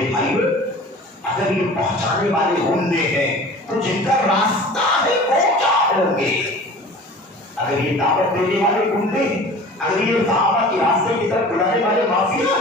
بھائیو، اگر یہ پہنچانے والے گنڈے ہیں تو جن کا راستہ ہے وہ کیا ہوں گے؟ اگر یہ دعوت دینے والے گنڈے، اگر یہ صحابہ کے راستے کی طرف بلانے والے مافیا،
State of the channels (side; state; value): both; normal; correlation 0.42